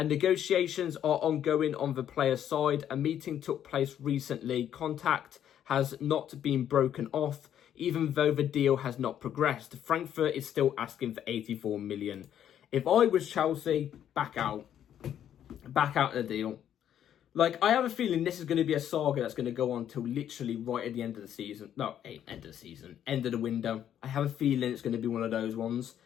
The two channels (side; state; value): right; quieter; 10.1 dB